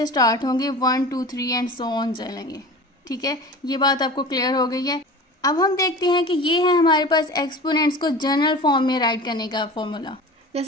स्टार्ट होंगे, 1, 2, 3 एंड सो ऑन चलेंगे। ठीक है, ये बात आपको क्लियर हो गई है। अब हम देखते हैं कि ये है हमारे पास एक्सपोनेंट्स को जनरल फॉर्म में राइट करने का फॉर्मूला।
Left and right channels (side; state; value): both; normal; correlation 0.36